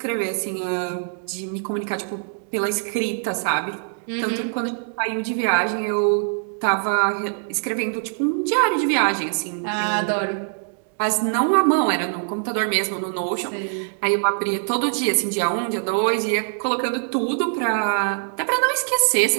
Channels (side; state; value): left; silent; 63 dB below the other